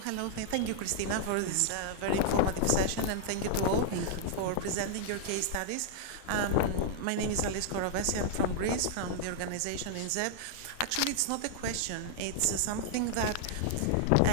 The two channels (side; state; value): both; different; correlation -0.01